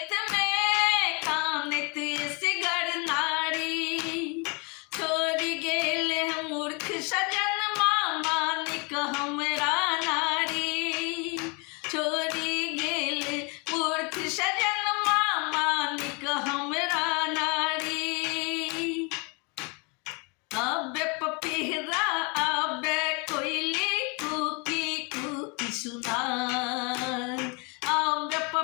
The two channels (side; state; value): right; quieter; 31.8 dB